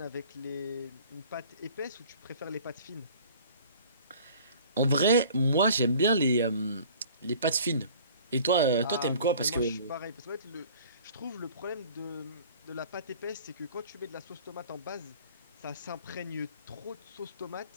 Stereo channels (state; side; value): inverted; both; correlation -0.49